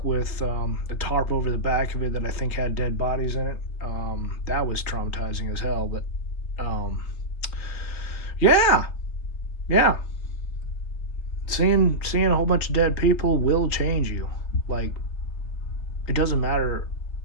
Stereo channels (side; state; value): right; late; 3.3 ms